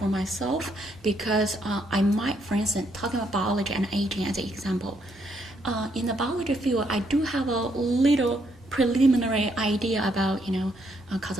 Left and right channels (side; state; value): both; normal; correlation 0.74